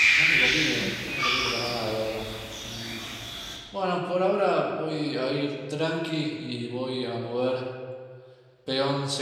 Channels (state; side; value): identical; both; correlation 1.00